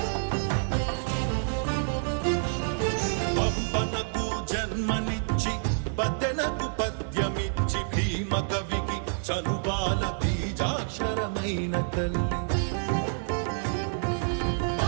పంపనకు జన్మనిచ్చి పద్దెనకు పద్యమిచ్చి భీమ కవికి చనుబాల బీజాక్షరమైన తల్లి.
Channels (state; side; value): silent; left; 59 dB below the other